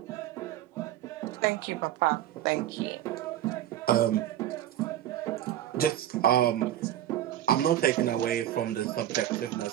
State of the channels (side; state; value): left; quieter; 12.3 dB